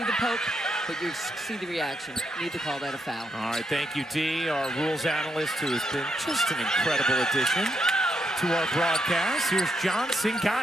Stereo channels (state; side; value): normal; both; correlation 0.79